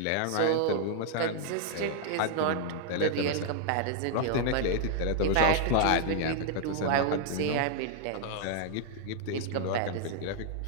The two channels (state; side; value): different; both; correlation 0.00